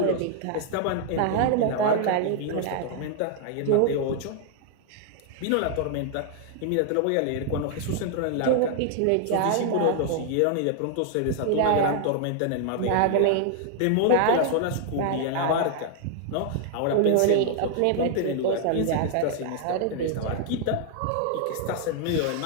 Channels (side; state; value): both; different; correlation 0.00